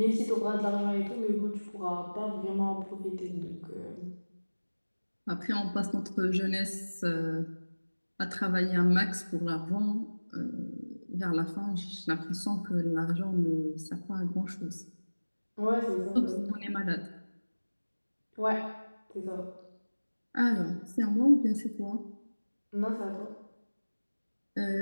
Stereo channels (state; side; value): inverted; both; correlation -1.00